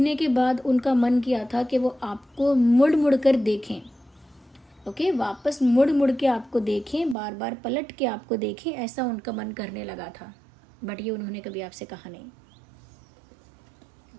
के बाद उनका मन किया था कि वो आपको मुड़ मुड़ कर देखें। ओके, वापस मुड़ मुड़ के आपको देखें, बार बार पलट के आपको देखें, ऐसा उनका मन करने लगा था। बट ये उन्होंने कभी आपसे कहा नहीं।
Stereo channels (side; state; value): left; drops out; at 7.2 s